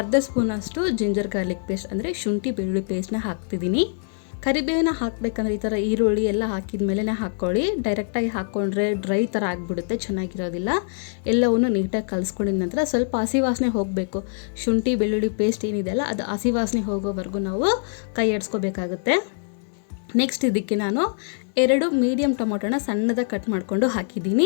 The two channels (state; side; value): silent; right; 63 dB below the other